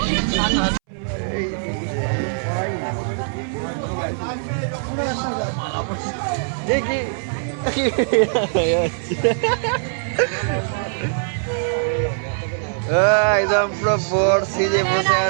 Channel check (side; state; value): left; silent; 65 dB below the other